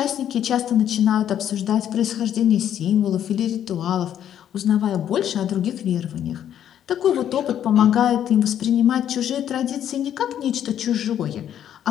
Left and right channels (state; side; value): quieter; right; 10.2 dB